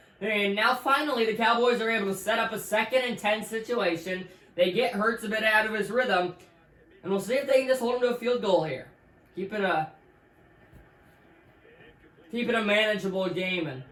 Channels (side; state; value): both; identical; correlation 1.00